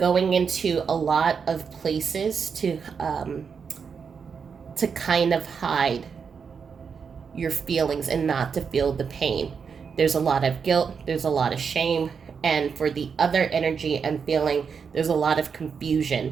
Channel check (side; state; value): left; quieter; 6.2 dB